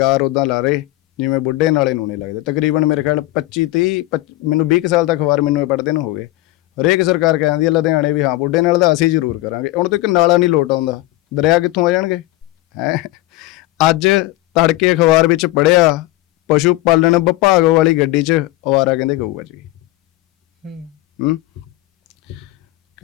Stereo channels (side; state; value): right; quieter; 17.7 dB